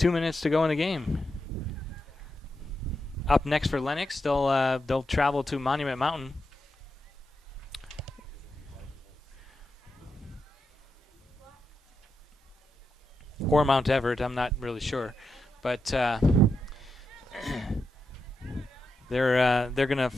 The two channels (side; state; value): both; normal; correlation 0.86